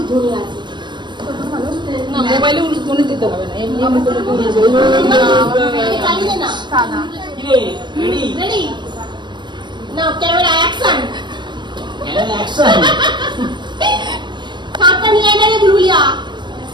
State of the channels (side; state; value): left; late; 0.22 ms